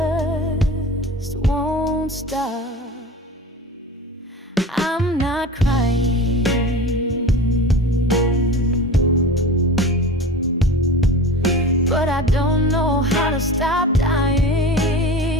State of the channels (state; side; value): normal; both; correlation 0.34